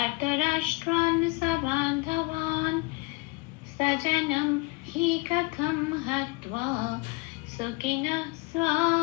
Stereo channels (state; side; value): quieter; right; 25.7 dB